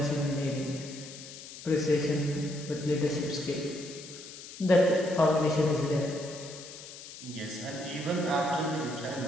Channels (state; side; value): noise; left; hiss, 14 dB below the sound